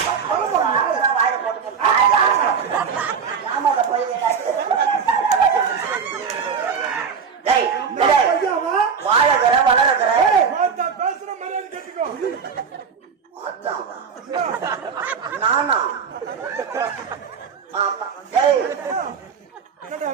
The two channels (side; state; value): left; quieter; 6.3 dB